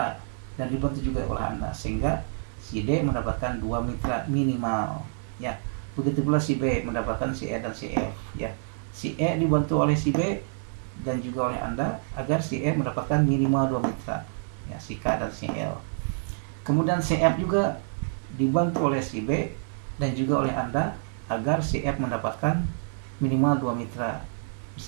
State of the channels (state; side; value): silent; left; digital silence